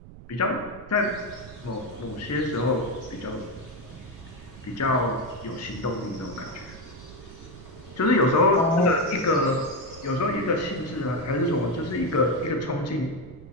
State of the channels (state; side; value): noise; right; rumble, 17 dB below the sound